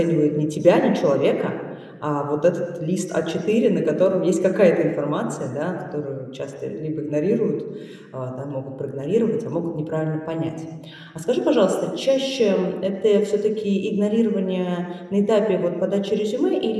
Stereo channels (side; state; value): both; identical; correlation 1.00